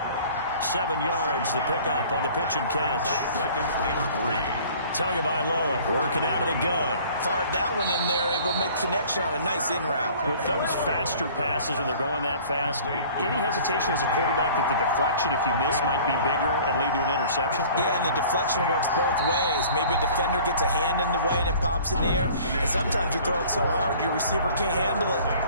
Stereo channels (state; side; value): inverted; both; correlation -0.49